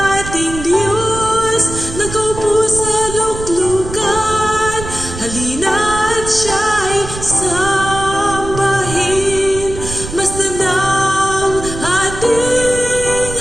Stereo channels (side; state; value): right; noise; rumble, 10 dB below the sound